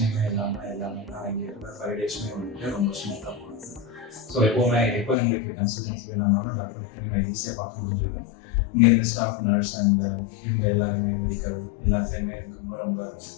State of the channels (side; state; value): right; drops out; at 5.2 s